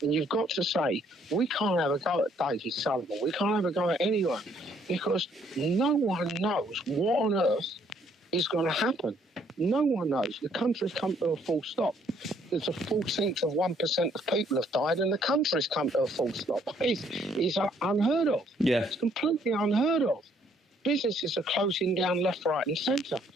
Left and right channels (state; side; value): normal; both; correlation 0.66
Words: And you've got to say, we can't have a go at David Sullivan, we can't have a go at anyone, because no one knows what on earth is going to happen. No one knows. The country's come to a full stop. There's a 14th of 1% of people have died, and the country's come to a full stop. It's unheard of. Yeah. It's completely unheard of. Businesses are closing down left, right and centre.